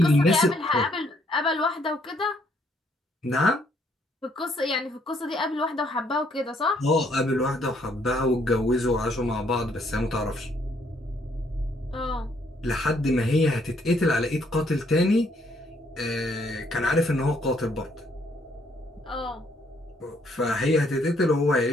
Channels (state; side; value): normal; both; correlation 0.69